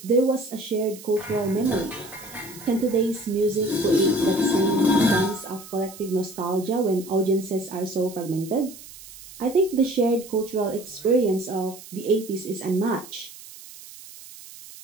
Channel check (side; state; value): right; noise; hiss, 17 dB below the sound